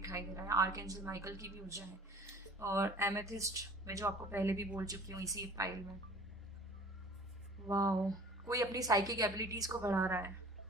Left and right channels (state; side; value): normal; both; correlation 0.47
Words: दे रहा है, आर्कएंजल माइकल की भी ऊर्जा है। और एमेथिस्ट में जो आपको पहले भी बोल चुकी हूँ इसी फाइल में। वाह, कोई अपनी साइकिक एबिलिटीज को बढ़ा रहा है।